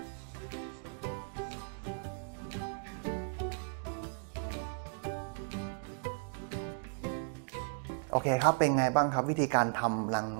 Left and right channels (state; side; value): silent; left; digital silence